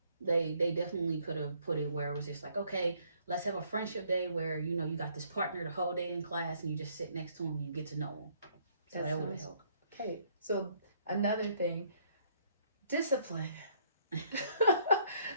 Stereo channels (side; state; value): both; inverted; correlation -0.66